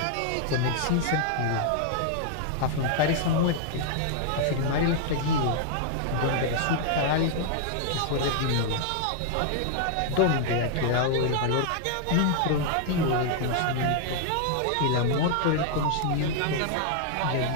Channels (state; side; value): different; both; correlation 0.00